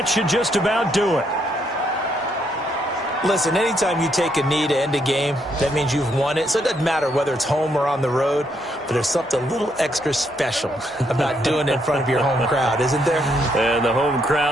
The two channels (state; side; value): normal; both; correlation 0.74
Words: should just about do it. Listen, anytime you take a knee to end a game, that means you've won it. So it doesn't matter whether it's home or on the road, but there's something a little extra special about doing it in front of your home crowd, isn't there? And the home